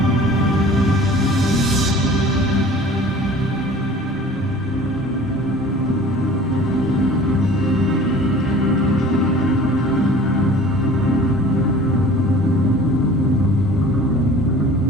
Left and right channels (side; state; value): both; normal; correlation 0.45